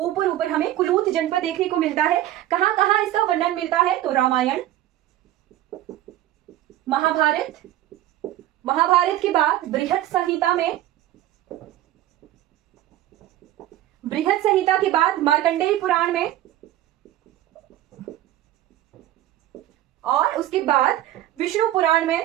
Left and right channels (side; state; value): left; quieter; 13.8 dB